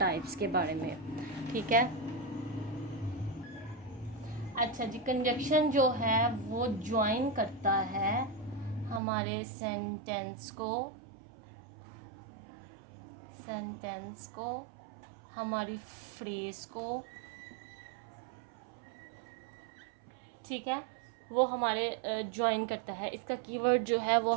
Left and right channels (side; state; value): left; drops out; at 9.0 s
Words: के बारे में। ठीक है। अच्छा जी, कंजक्शन जो है वो ज्वाइन करता है हमारे सेंटेंस को हमारी फ्रेज को। ठीक है, वो हमारे ज्वाइन करता है। इसका कीवर्ड जो है वो